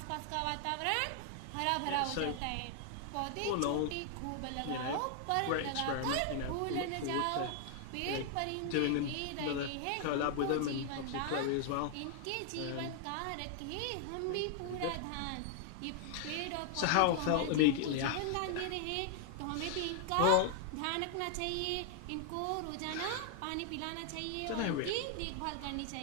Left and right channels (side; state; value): both; different; correlation 0.00